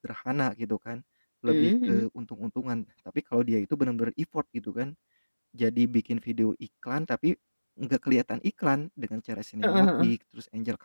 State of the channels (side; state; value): both; inverted; correlation -1.00